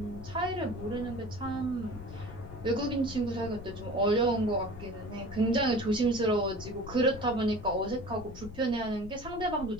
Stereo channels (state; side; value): noise; left; rumble, 13 dB below the sound